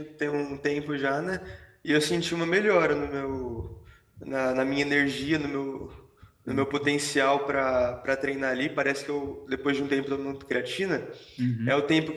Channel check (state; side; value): identical; both; correlation 1.00